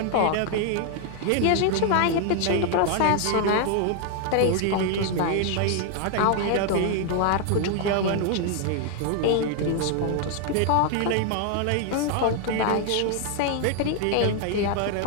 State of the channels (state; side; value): different; both; correlation 0.00